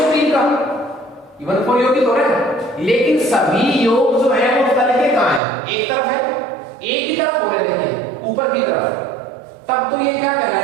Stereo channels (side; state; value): left; drops out; at 5.4 s